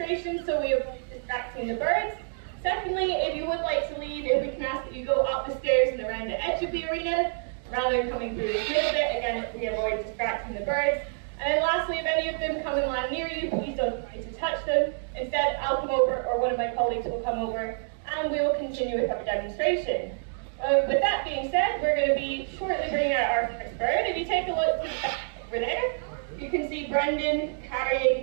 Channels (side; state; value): left; silent; digital silence